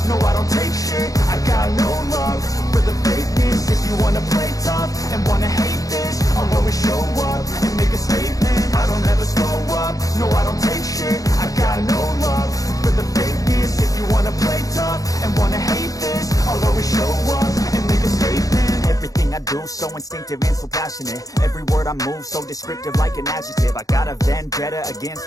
no I don't take shit. I got no love for the fakeness. If you wanna play tough and wanna hate this, I'll always show up and make a statement. I don't ever slow up, no I don't take shit. I got no love for the fakeness. If you wanna play tough and wanna hate this, I'll always show up and make a statement. Everything I do so instinctive and so passionate. Every word I move so descriptive like an adjective. I got a vendetta against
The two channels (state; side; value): late; right; 0.17 ms